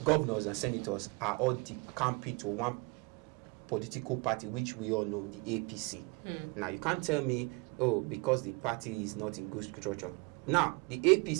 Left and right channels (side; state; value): left; quieter; 28.4 dB